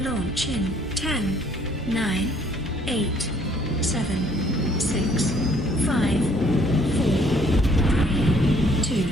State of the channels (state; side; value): normal; both; correlation 0.62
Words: Launch in 10, 9, 8, 7, 6, 5, 4, 3,